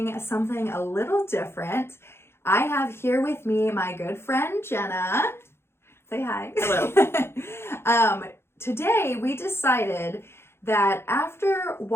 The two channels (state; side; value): late; right; 0.12 ms